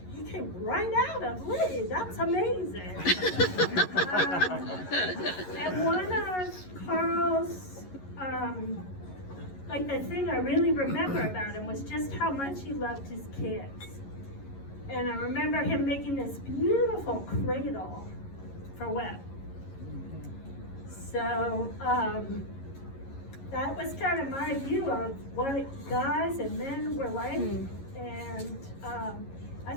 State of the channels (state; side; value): late; right; 11 ms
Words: he came right out of Lee. That's amazing. And one of Carl's, like the thing I really remember about him was just how much he loved his kids. And I remember him making this beautiful cradle for Webb. So that was kind of my view of what guys and men were like. And I